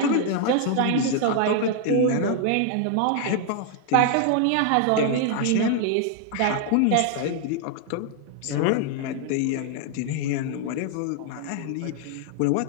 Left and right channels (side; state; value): both; different; correlation 0.00